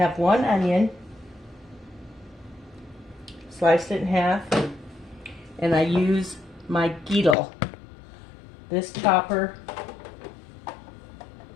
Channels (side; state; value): right; drops out; at 7.4 s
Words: 1 onion, sliced it in half, and I use my Geedle. This chopper